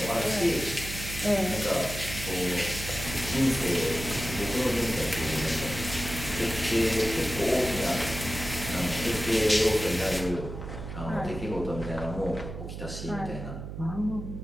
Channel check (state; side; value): noise; right; hum, 8 dB below the sound